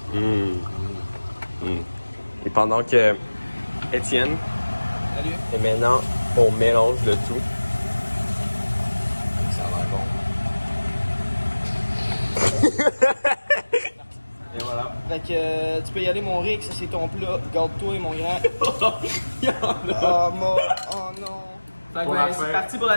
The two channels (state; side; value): inverted; both; correlation -1.00